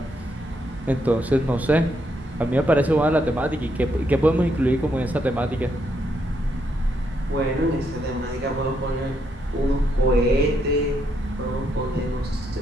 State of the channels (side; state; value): both; normal; correlation 0.77